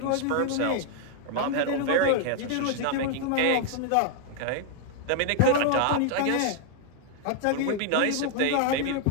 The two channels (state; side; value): different; both; correlation 0.00